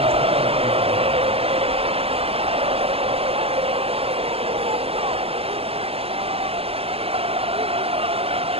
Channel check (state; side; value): late; left; 0.28 ms